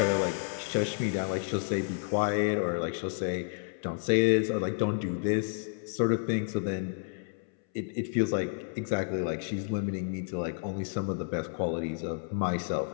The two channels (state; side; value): silent; right; 57 dB below the other